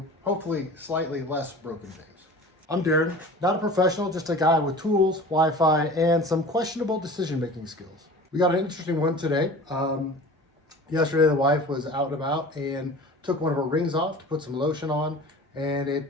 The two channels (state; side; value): normal; both; correlation 0.40